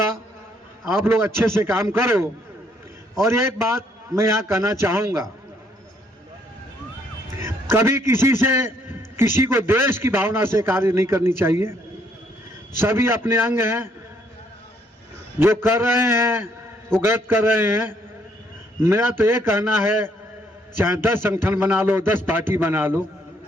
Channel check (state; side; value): normal; both; correlation 0.69